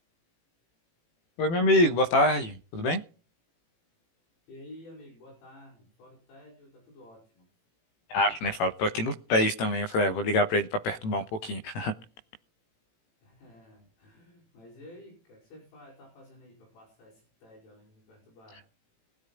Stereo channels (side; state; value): right; late; 18 ms